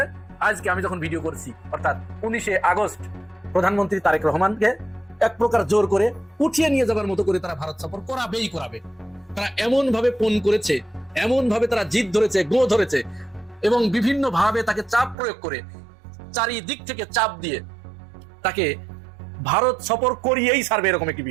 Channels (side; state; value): left; drops out; at 15.2 s